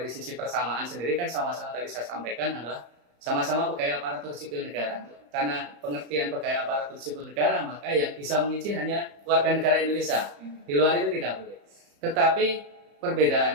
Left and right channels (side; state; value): left; late; 34 ms